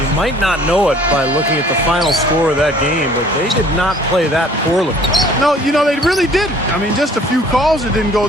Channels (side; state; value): both; normal; correlation 0.54